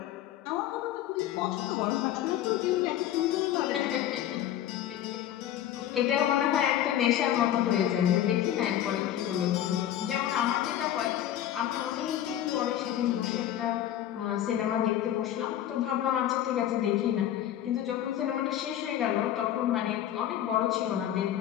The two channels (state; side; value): quieter; right; 11.7 dB